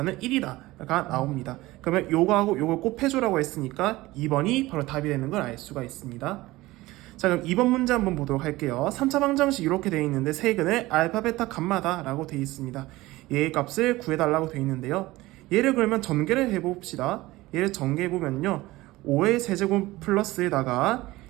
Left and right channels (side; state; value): left; quieter; 18.9 dB